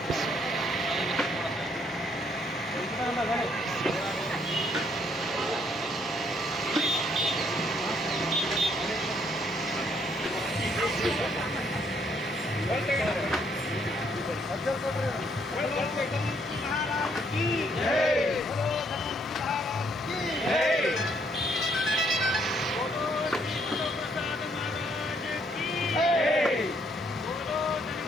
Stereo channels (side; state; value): both; normal; correlation 0.69